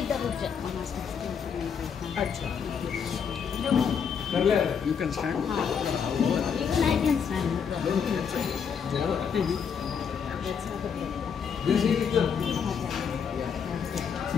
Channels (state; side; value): quieter; right; 6.9 dB